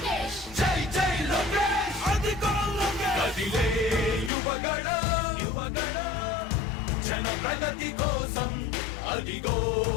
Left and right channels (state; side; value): drops out; right; at 4.3 s